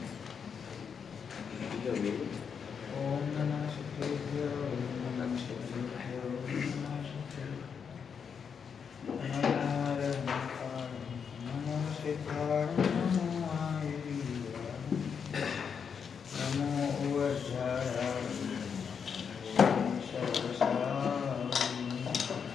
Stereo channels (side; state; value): right; quieter; 6.7 dB